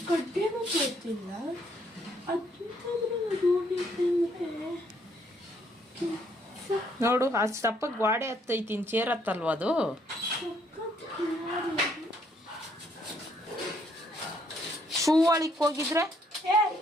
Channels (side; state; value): both; normal; correlation 0.69